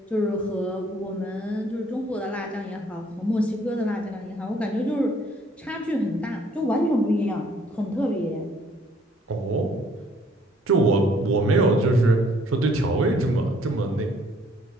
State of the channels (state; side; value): normal; both; correlation 0.62